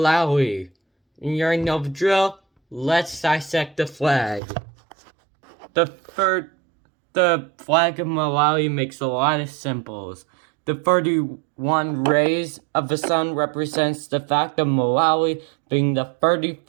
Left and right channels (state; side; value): drops out; left; at 4.4 s